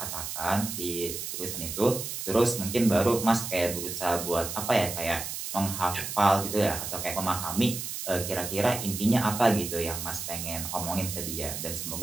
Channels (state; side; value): noise; right; hiss, 6 dB below the sound